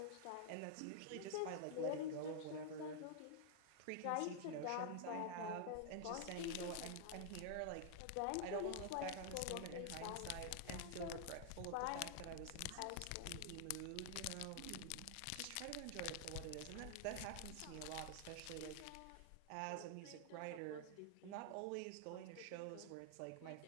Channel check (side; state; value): both; different; correlation 0.00